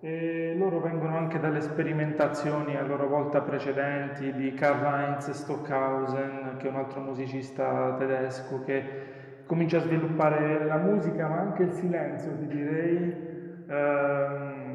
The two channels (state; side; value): identical; both; correlation 1.00